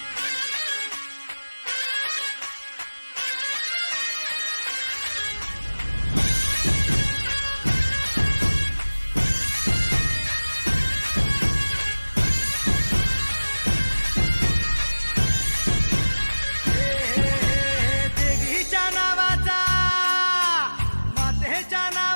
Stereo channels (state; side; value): inverted; both; correlation -1.00